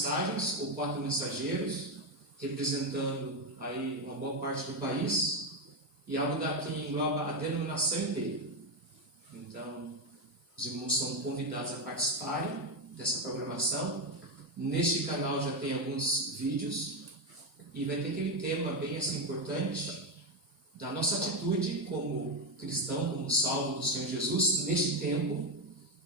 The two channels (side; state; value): both; normal; correlation 0.09